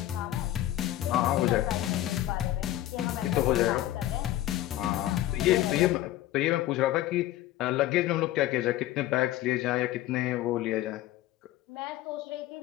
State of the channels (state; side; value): quieter; right; 14.3 dB